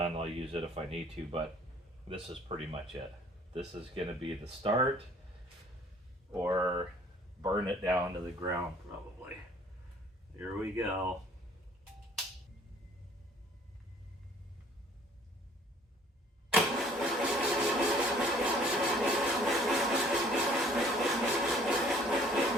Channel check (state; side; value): normal; both; correlation 0.56